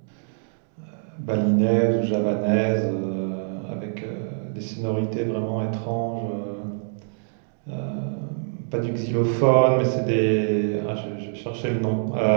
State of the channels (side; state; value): left; silent; digital silence